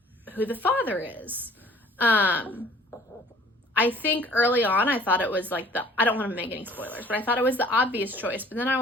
who the father is. I think early on I thought it was like I don't want to make any spoilers, but I thought it was the obvious choice. But then I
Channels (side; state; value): both; normal; correlation 0.52